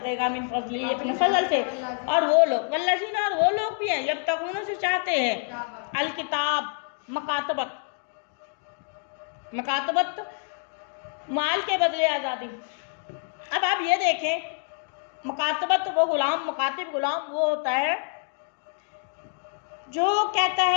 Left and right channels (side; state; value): right; silent; 58 dB below the other